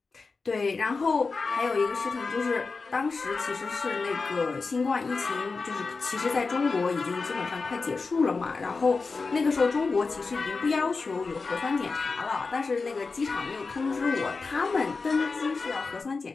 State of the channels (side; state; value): right; quieter; 4.3 dB